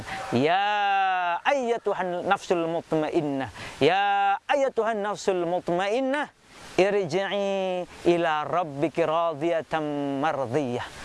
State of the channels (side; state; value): both; identical; correlation 1.00